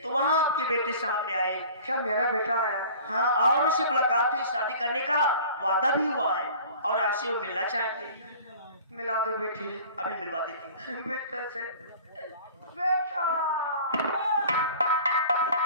तो वहाँ आपके बेटे सामने आए। क्या मेरा बेटा आया? हाँ, और उससे मुलाकात हुई, शादी करने का वादा भी हुआ है और आपसे वो मिलना चाहते हैं। मिला दो बेटी। अभी मिलवा देती हूँ। बेटा से बेटा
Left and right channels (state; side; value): inverted; both; correlation -0.45